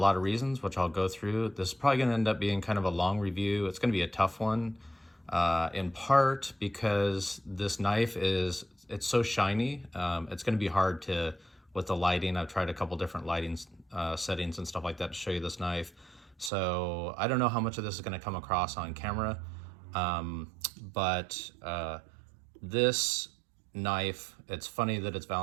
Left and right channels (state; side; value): drops out; left; at 16.5 s